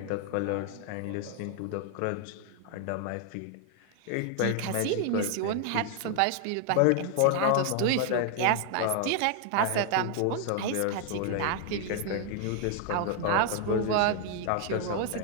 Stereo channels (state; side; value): different; both; correlation 0.00